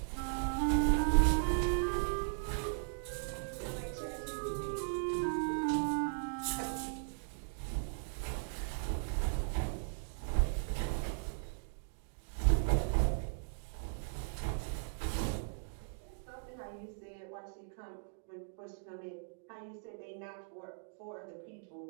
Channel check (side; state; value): left; silent; digital silence